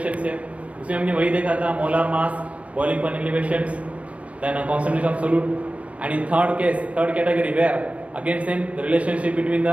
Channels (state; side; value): late; left; 0.064 ms